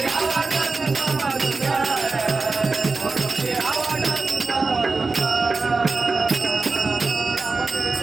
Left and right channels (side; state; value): left; quieter; 3.9 dB